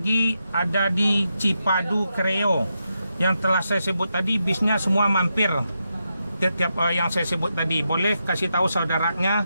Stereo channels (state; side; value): inverted; both; correlation -0.86